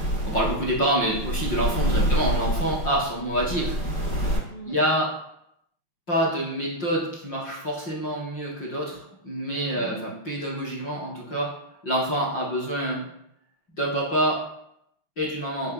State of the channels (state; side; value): late; right; 5.6 ms